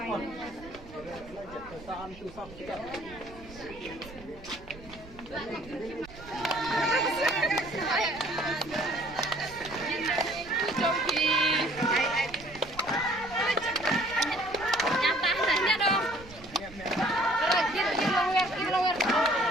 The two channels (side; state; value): right; noise; rumble, 19 dB below the sound